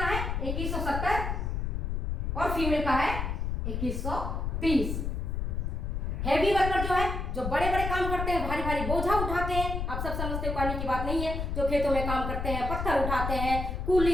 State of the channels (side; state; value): left; noise; rumble, 2 dB below the sound